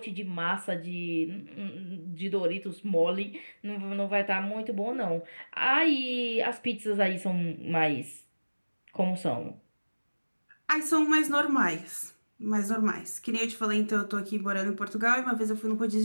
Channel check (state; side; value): inverted; both; correlation -1.00